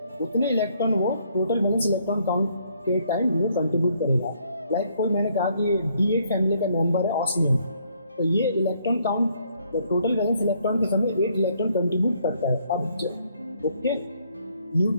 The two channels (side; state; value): both; inverted; correlation -0.68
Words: उतने इलेक्ट्रॉन वो टोटल वैलेंस इलेक्ट्रॉन काउंट के टाइम वो कंट्रीब्यूट करेगा। लाइक कोई मैंने कहा कि D8 फैमिली का मेंबर है ऑस्मियम, तो ये electron count total valence electron के समय 8 इलेक्ट्रॉन कंट्रीब्यूट करता है। अब ओके,